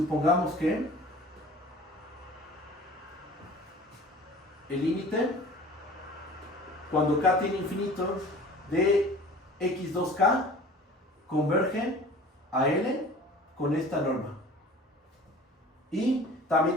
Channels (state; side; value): normal; both; correlation 0.44